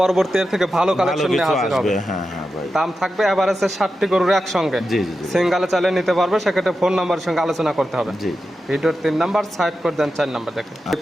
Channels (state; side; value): normal; both; correlation 0.90